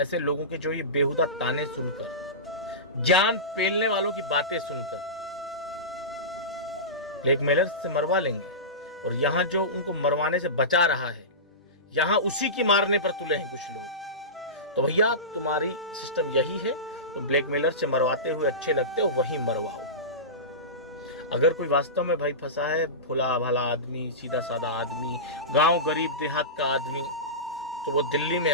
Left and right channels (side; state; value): both; normal; correlation -0.20